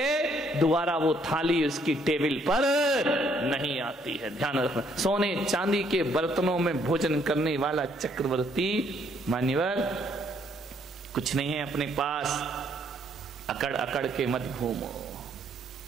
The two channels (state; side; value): normal; both; correlation 0.68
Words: दोबारा वो थाली उसकी टेबल पर नहीं आती है। ध्यान रखना, सोने चांदी के बर्तनों में भोजन करने वाला चक्रवर्ती मान्यवर कुछ नहीं है अपने पास। अकड़ अकड़ के मत घूमो।